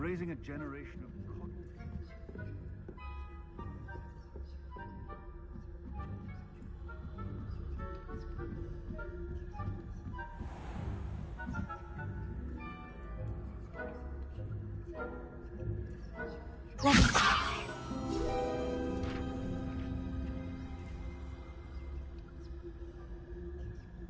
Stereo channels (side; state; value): both; identical; correlation 1.00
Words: a generation of... Let me try.